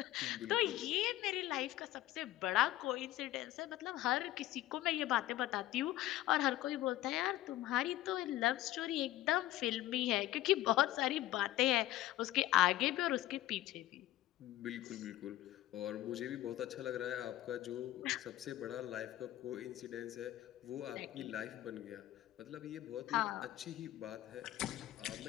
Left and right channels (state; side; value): quieter; right; 15.1 dB